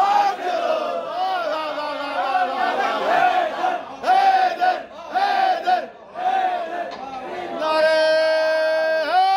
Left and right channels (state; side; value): identical; both; correlation 1.00